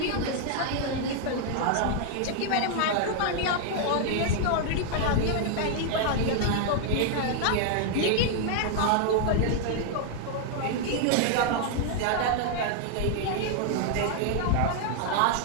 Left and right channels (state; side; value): different; both; correlation 0.00